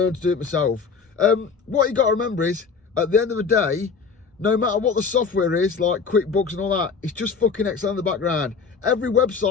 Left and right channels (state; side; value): quieter; right; 5.4 dB